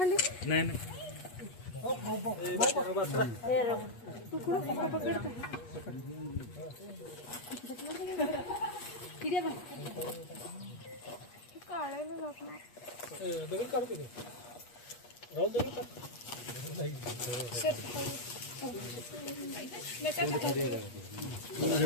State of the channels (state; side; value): late; right; 8.4 ms